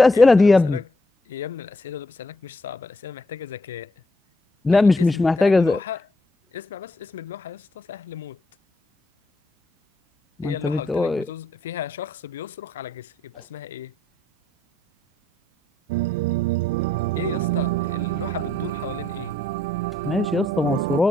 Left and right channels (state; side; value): normal; both; correlation 0.74